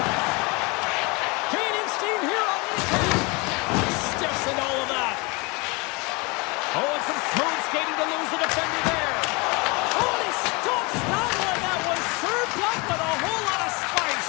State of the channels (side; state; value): right; quieter; 27.7 dB